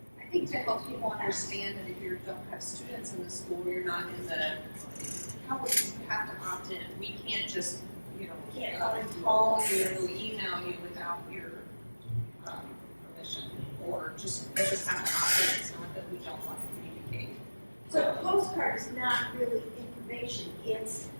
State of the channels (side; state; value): both; inverted; correlation -1.00